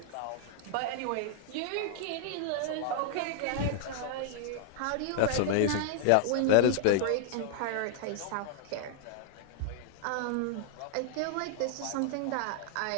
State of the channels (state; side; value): different; both; correlation -0.01